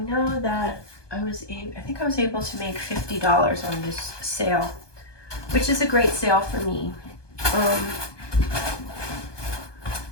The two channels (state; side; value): late; right; 1.2 ms